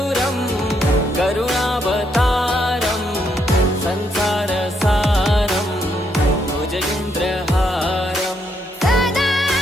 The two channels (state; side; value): normal; both; correlation 0.76